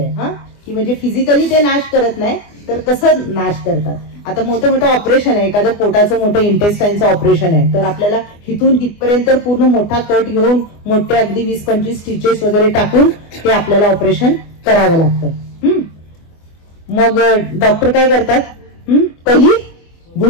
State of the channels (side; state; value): right; late; 24 ms